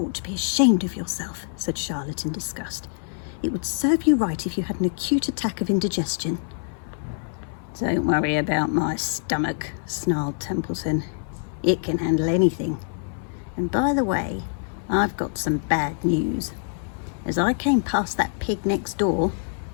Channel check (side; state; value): right; silent; 60 dB below the other